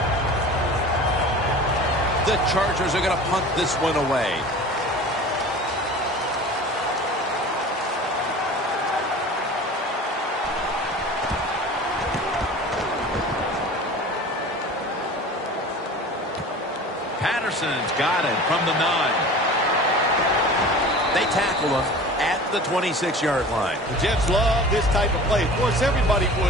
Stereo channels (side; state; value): both; normal; correlation 0.39